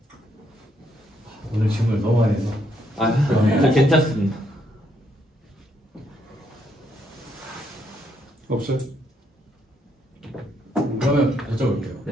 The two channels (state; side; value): normal; both; correlation 0.74